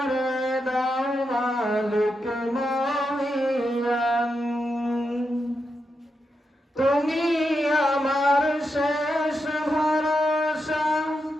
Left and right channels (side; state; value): both; normal; correlation 0.86